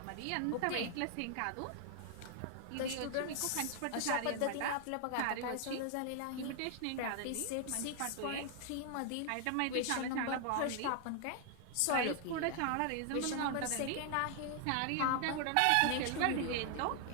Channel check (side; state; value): both; different; correlation 0.00